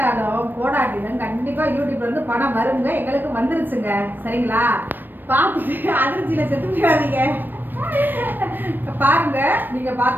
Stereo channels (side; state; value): left; late; 0.093 ms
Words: போடாட்டிலும் கண்டிப்பாக யூடியூப்லேருந்து பணம் வருங்க. எங்களுக்கு வந்துருச்சுங்க. சரிங்களா? பார்த்துட்டு அதிர்ச்சியில் செத்து போயிடாதீங்க. பாருங்க, நீங்கள்